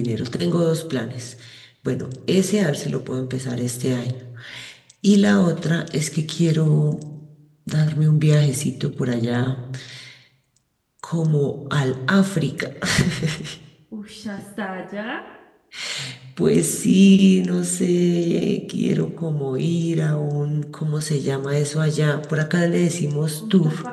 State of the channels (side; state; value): both; identical; correlation 1.00